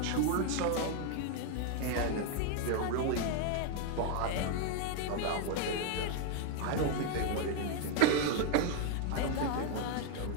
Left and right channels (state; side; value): different; both; correlation 0.00